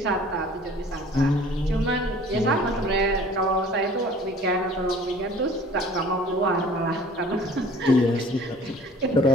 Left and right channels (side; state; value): both; normal; correlation 0.49